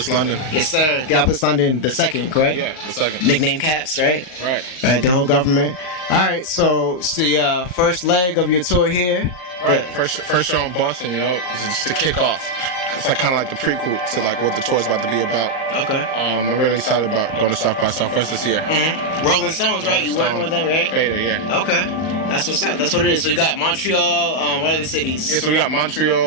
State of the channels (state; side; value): late; right; 38 ms